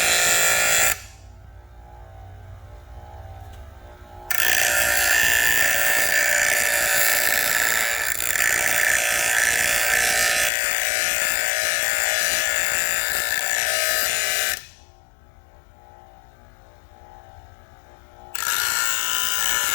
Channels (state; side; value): drops out; right; at 10.5 s